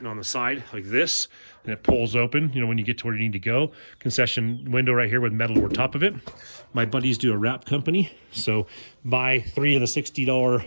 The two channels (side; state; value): both; inverted; correlation -1.00